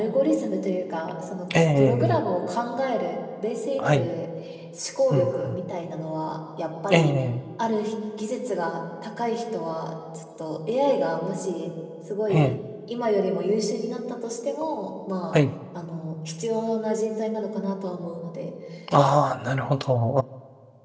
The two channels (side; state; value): both; identical; correlation 1.00